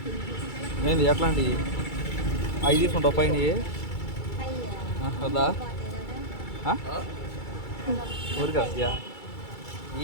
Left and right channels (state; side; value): late; right; 2.3 ms